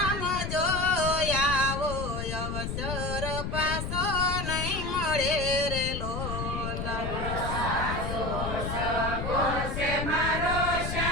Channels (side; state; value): left; noise; rumble, 4 dB below the sound